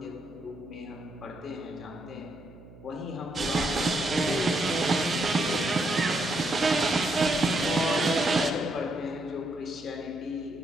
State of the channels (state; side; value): noise; right; hum, 20 dB below the sound